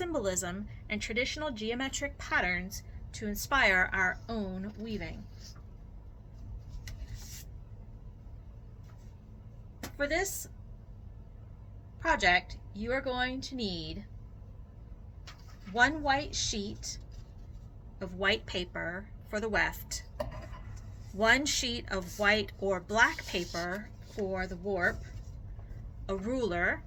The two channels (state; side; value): identical; both; correlation 1.00